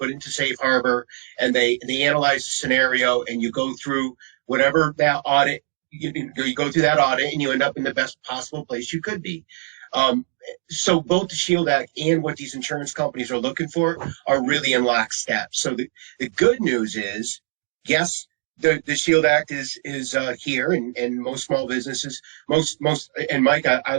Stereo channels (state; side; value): silent; left; digital silence